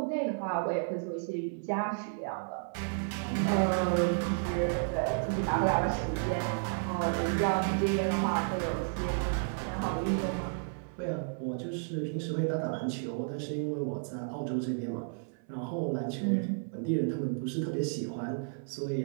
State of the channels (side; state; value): left; silent; 56 dB below the other